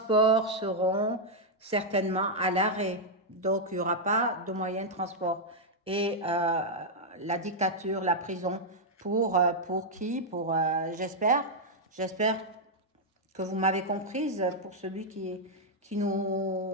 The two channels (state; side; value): normal; both; correlation -0.04